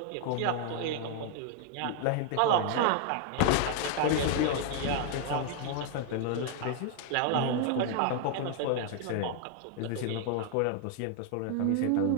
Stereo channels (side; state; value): both; different; correlation 0.00